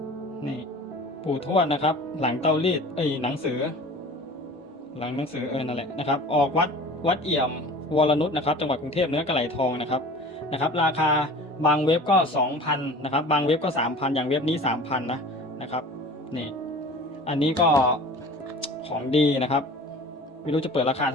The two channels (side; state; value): both; normal; correlation 0.41